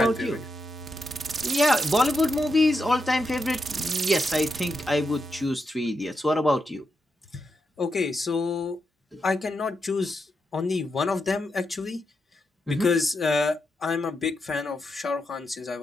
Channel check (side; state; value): both; normal; correlation 0.85